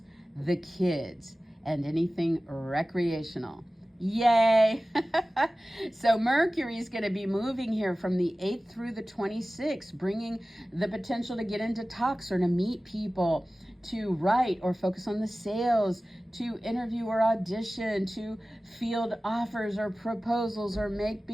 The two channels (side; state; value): both; normal; correlation 0.97